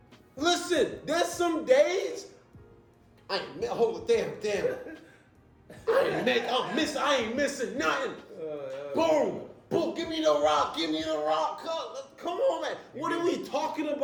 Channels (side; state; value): both; identical; correlation 1.00